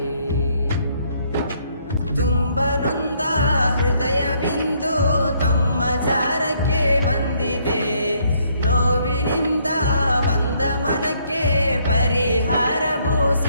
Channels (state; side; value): inverted; both; correlation -0.68